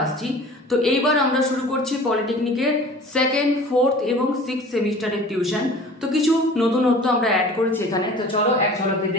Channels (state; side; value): normal; both; correlation 0.43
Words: আসছি। তো এইবার আমরা শুরু করছি পলিটেকনিকের 2nd, 4th এবং 6th সেমিস্টারের টিউশন। তো কিছু নতুনত্ব আমরা অ্যাড করেছি এখানে, তো চলো এক ঝলকে